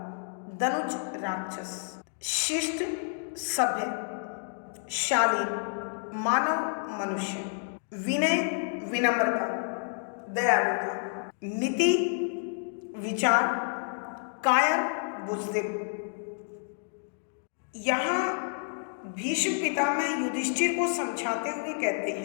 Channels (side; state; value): right; silent; 58 dB below the other